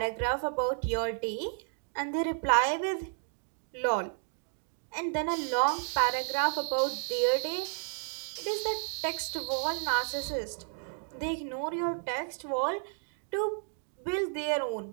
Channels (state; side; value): silent; left; 56 dB below the other